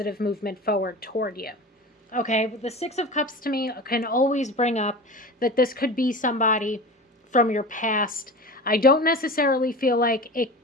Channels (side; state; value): both; normal; correlation 0.32